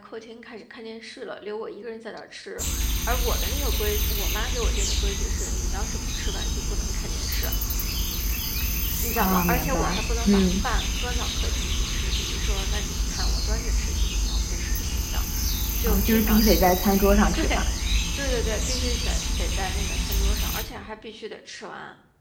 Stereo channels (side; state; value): both; identical; correlation 1.00